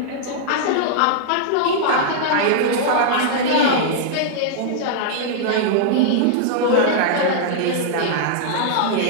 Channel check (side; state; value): both; different; correlation -0.01